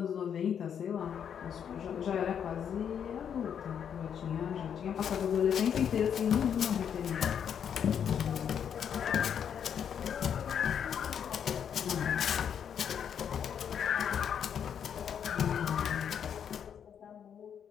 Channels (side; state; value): right; quieter; 8.2 dB